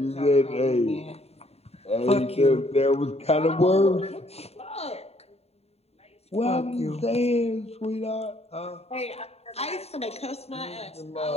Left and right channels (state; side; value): late; right; 0.30 ms